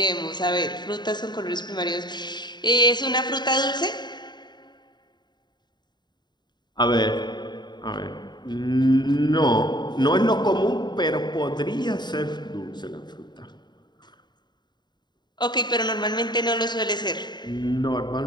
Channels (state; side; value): late; right; 0.21 ms